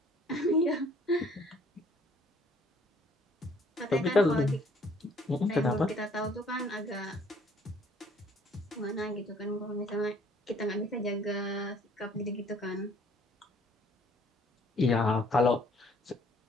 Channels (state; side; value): normal; both; correlation 0.60